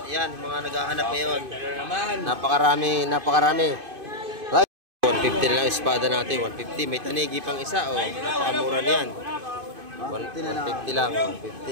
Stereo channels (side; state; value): left; late; 2.5 ms